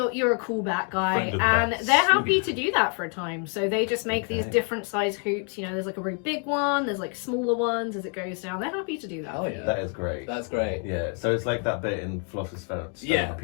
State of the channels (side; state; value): right; quieter; 38.0 dB